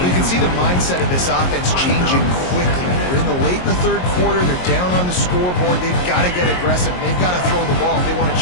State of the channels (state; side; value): late; right; 22 ms